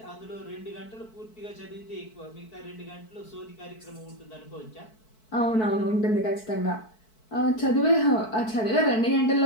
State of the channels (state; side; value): late; right; 4.6 ms